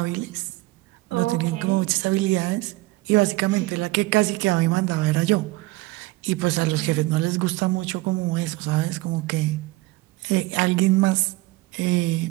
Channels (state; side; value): quieter; left; 20.2 dB